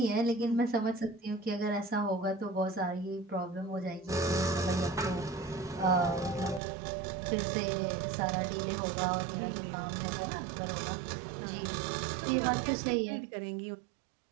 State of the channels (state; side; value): drops out; left; at 6.6 s